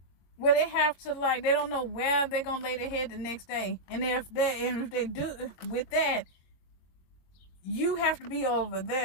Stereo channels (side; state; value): right; late; 21 ms